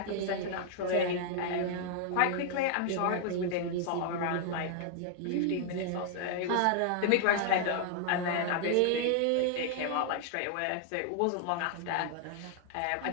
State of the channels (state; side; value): different; both; correlation 0.00